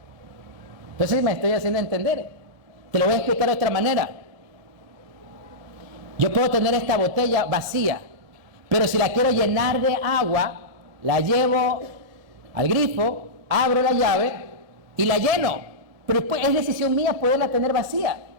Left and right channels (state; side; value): late; left; 1.7 ms